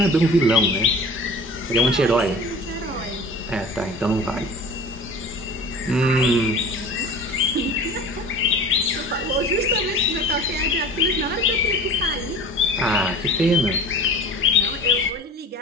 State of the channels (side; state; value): both; normal; correlation 0.41